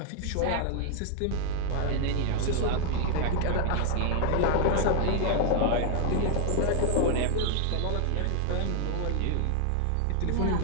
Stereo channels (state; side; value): different; both; correlation 0.00